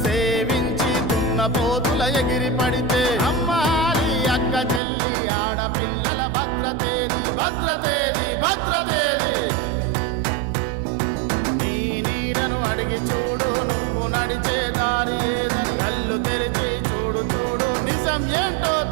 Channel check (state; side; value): drops out; left; at 4.8 s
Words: సేవించి దున్నపోతుల ఎగిరి పడితే అమ్మాలి అక్క చెల్లి ఆడపిల్లల భద్రతేది భద్రతేది భద్రతేది. నీ నీడను అడిగి చూడు నువ్వు నడిచే దారి ఏదని, కళ్ళు తెరిచి చూడు చూడు నిజం ఏంటో